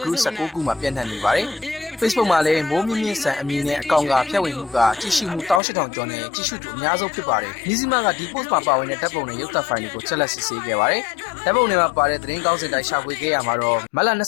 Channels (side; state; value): right; drops out; at 5.6 s